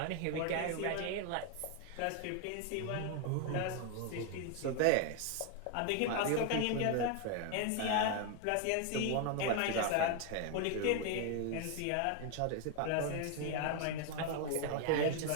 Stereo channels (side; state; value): both; different; correlation 0.01